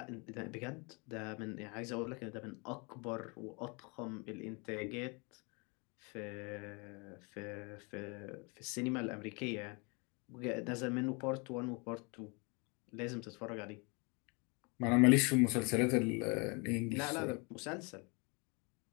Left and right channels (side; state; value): right; quieter; 31.2 dB